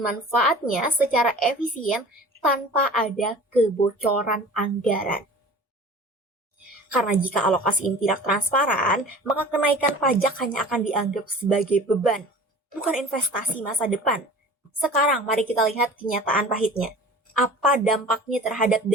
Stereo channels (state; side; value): normal; both; correlation 0.42